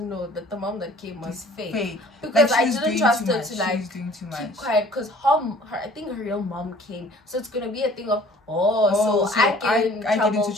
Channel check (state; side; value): normal; both; correlation 0.52